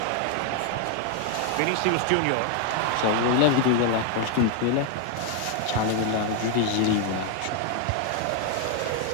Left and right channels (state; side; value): different; both; correlation 0.00